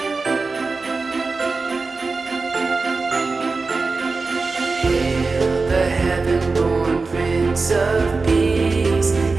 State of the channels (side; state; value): left; quieter; 4.0 dB